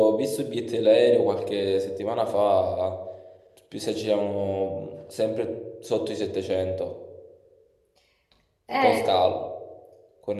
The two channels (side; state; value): both; identical; correlation 1.00